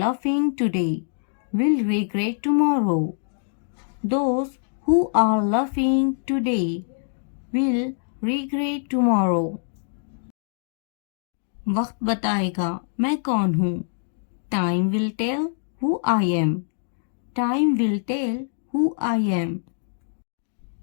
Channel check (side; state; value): right; silent; digital silence